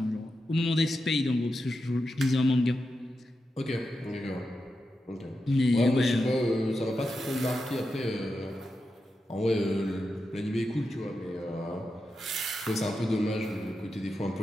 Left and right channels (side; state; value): both; normal; correlation 0.89